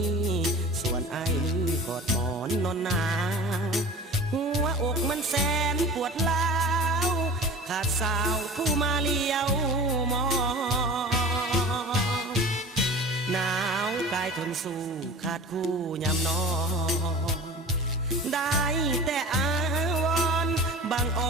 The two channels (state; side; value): normal; both; correlation 0.38